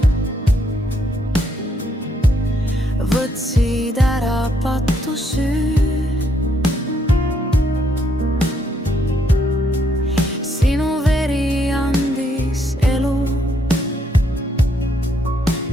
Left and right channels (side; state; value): both; normal; correlation 0.73